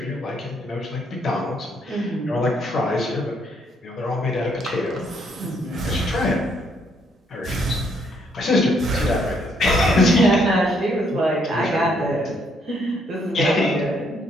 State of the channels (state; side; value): normal; both; correlation 0.70